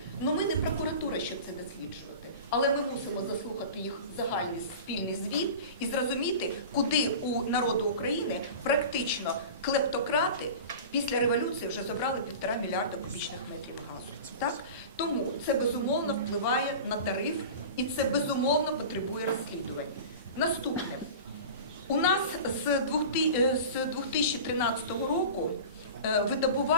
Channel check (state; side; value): inverted; both; correlation -0.34